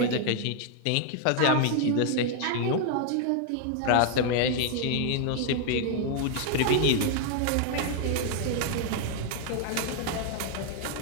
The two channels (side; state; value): both; different; correlation 0.00